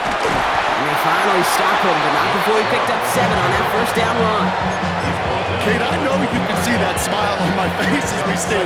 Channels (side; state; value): both; identical; correlation 1.00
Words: And they finally stop him, but not before he picked up 7 on that first down run. Kate, I know you can see that smile on my face as we